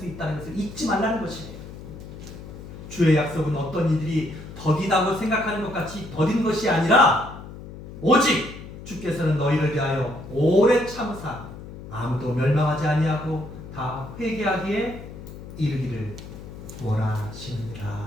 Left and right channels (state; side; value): noise; left; hum, 13 dB below the sound